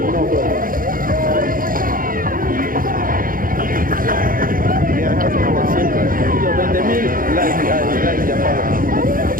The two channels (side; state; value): left; late; 0.41 ms